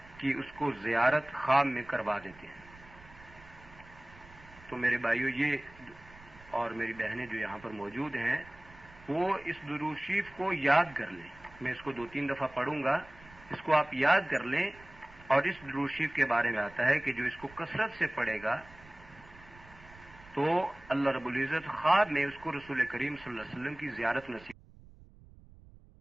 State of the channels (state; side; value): noise; right; rumble, 22 dB below the sound